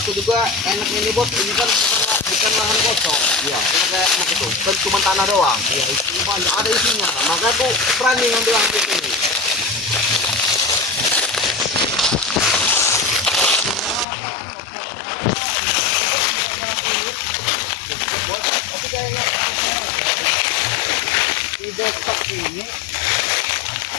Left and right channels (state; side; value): drops out; right; at 14.1 s